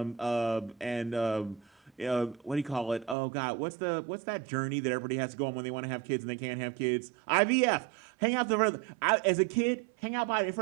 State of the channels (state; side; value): drops out; left; at 3.2 s